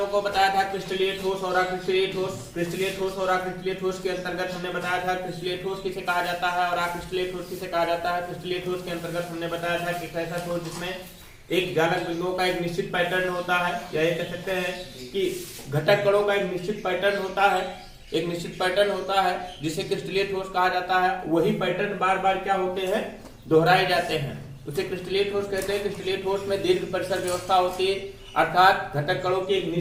को बताया था क्रिस्टलीय ठोस और अक्रिस्टलीय ठोस। क्रिस्टलीय ठोस और अक्रिस्टलीय ठोस के अंतर्गत हमने बताया था क्रिस्टलीय ठोस किसे कहा जाता है और अक्रिस्टलीय ठोस किसे कहा जाता है। क्रिस्टलीय ठोस के अंतर्गत हमने बताया था कि ऐसा ठोस जिसमें एक जालक बिंदुओं का एक निश्चित पैटर्न होता है, या ये कह सकते हैं कि घटक कणों का एक निश्चित पैटर्न होता है, एक निश्चित पैटर्न होता है जिसे क्रिस्टलीय ठोस कहा जाता है। वही पैटर्न बार बार क्या होते हैं, दोहराए जाते हैं, उसे क्रिस्टलीय ठोस कहते हैं। क्रिस्टलीय ठोस में दीर्घ परिसर व्यवस्था होती है, अर्थात घटक कणों की एक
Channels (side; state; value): both; identical; correlation 1.00